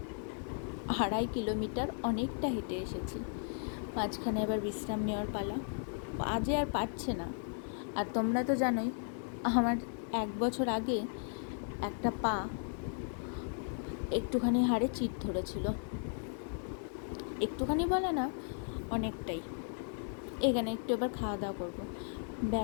2.5 কিলোমিটার অনেকটা হেঁটে এসেছি। মাঝখানে এবার বিশ্রাম নেওয়ার পালা। পা যে আর পারছে না। আর তোমরা তো জানোই, আমার 1 বছর আগে একটা পা একটুখানি হাড়ে চিট ধরেছিল। একটুখানি বলে না, অনেকটাই। এখানে একটু এবার খাওয়া দাওয়া করবো।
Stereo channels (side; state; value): right; silent; 54 dB below the other